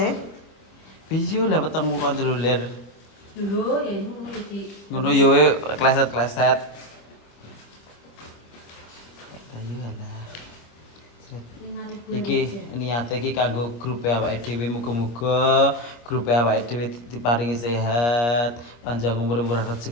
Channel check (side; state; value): right; late; 25 ms